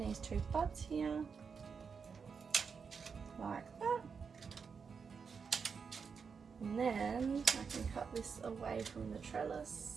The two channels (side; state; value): left; quieter; 5.9 dB